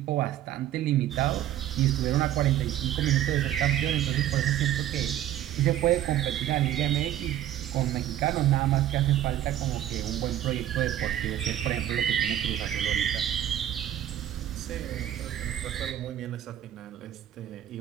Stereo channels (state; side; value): quieter; left; 12.1 dB